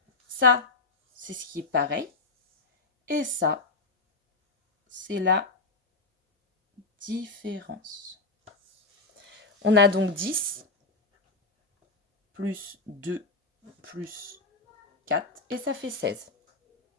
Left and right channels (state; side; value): quieter; right; 3.5 dB